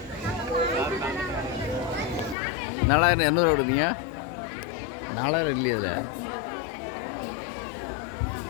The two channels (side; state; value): right; drops out; at 2.4 s